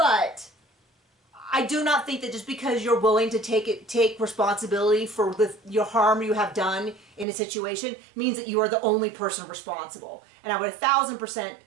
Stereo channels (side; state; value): left; drops out; at 7.2 s